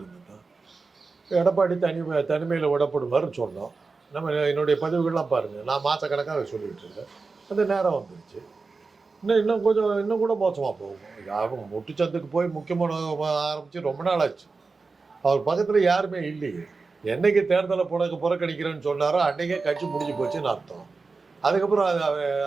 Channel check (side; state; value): left; quieter; 4.2 dB